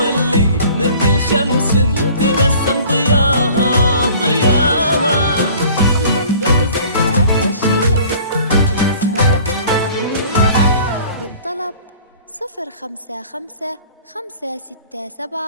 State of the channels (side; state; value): both; inverted; correlation -0.49